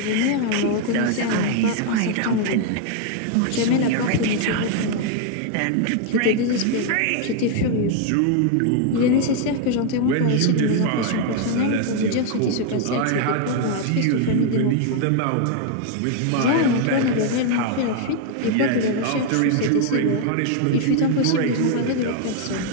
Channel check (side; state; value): both; different; correlation 0.00